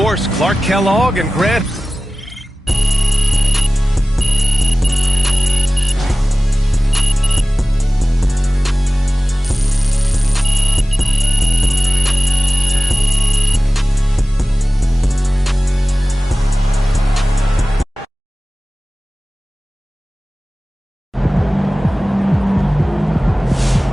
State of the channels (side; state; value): both; normal; correlation 0.97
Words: Clark Kellogg, and Grant.